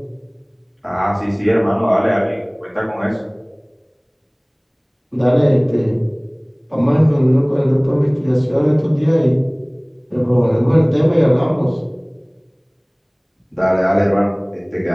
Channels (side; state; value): both; identical; correlation 1.00